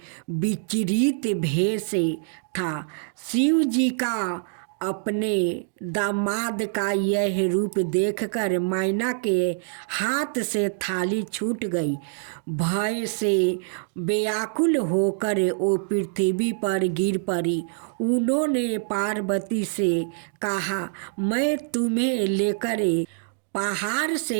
विचरित भेष था। शिव जी का अपने दामाद का यह रूप देखकर मैना के हाथ से थाली छूट गई। भय से व्याकुल होकर वो पृथ्वी पर गिर पड़ी। उन्होंने पार्वती से कहा, मैं तुम्हें लेकर पहाड़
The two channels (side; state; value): left; silent; 62 dB below the other